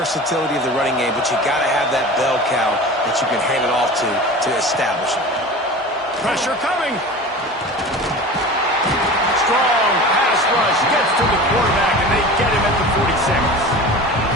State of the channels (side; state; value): both; normal; correlation 0.35